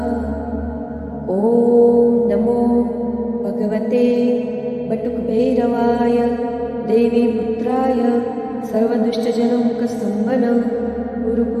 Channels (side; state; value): both; identical; correlation 1.00